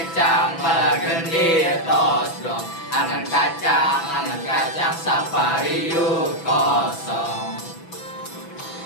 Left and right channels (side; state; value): right; late; 6.0 ms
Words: balagendir tos blong. Angan kacang, sapariu kosong.